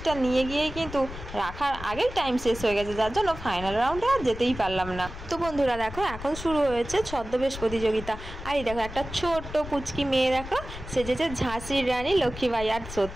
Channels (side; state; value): left; noise; rumble, 11 dB below the sound